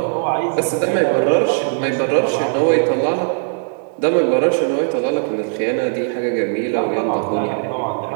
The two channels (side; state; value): left; silent; digital silence